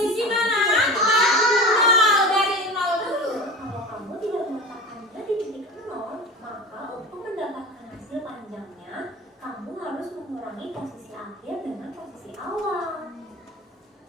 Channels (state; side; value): normal; both; correlation 0.31